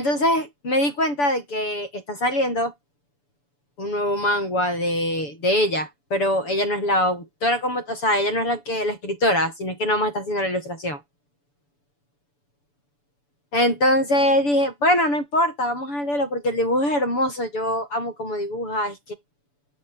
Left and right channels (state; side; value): late; right; 6.9 ms